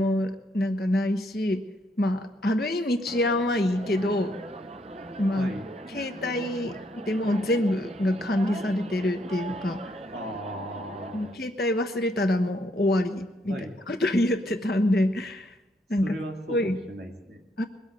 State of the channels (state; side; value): normal; both; correlation 0.73